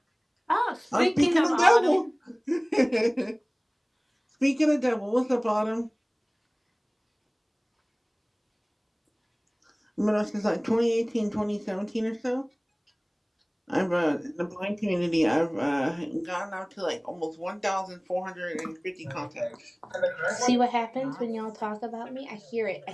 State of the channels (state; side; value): identical; both; correlation 1.00